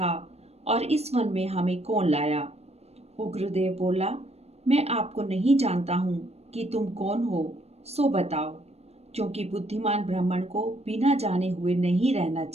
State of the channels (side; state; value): left; late; 0.31 ms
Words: और इस वन में हमें कौन लाया। उग्रदेव बोला, मैं आपको नहीं जानता हूँ कि तुम कौन हो, सो बताओ, क्योंकि बुद्धिमान ब्राह्मण को बिना जाने हुए नहीं रहना